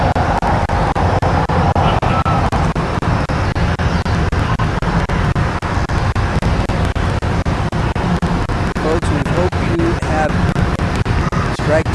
Folks, we hope you have Strike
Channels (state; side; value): identical; both; correlation 1.00